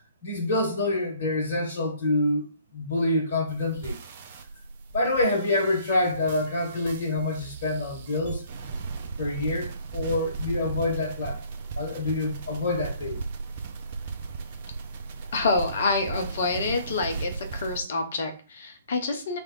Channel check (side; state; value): both; inverted; correlation -0.59